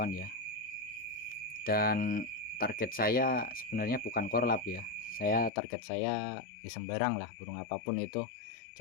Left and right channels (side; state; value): right; drops out; at 5.5 s